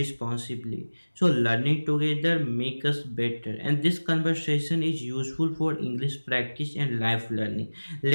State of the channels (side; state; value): both; inverted; correlation -1.00